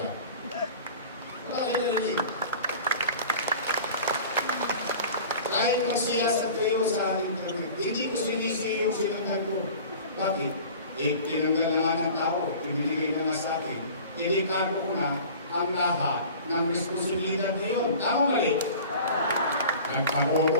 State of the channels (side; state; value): both; inverted; correlation -0.41